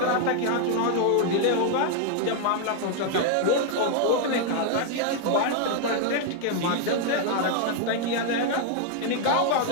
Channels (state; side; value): different; both; correlation 0.00